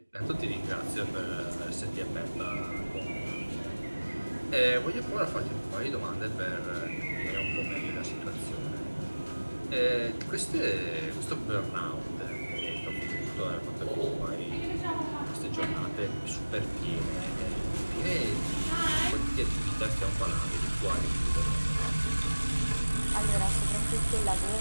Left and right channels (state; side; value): inverted; both; correlation -1.00